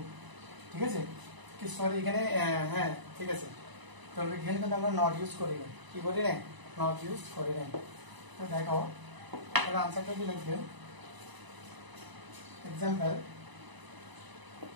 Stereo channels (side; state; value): left; late; 1.0 ms